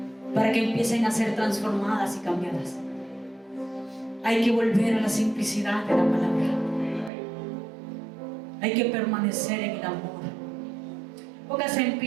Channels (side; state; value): left; drops out; at 7.1 s